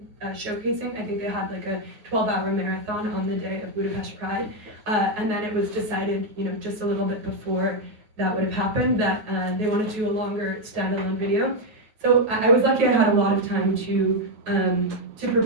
showcasing. I think they had like a 12-hour marathon on the day of Budapest Pride, and then it was decided, just a little bit before that would have happened, that they wanted to do a longer standalone video. So I was lucky I had a lot of time to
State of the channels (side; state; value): left; late; 9.4 ms